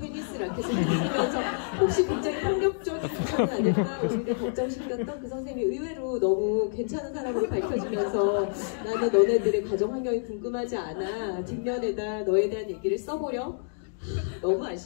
라켓을 들면서 혹시 굉장히 폭력적인 부상은 아닐까 우리를 걱정시켰던 그 선생님이 의외로 너무 괜찮은 사람으로 밝혀지면서 나는 너네들의 가정 환경이 궁금하지 않아 뒷면에다 너에 대한 얘기를 써보려 너무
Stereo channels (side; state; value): right; silent; digital silence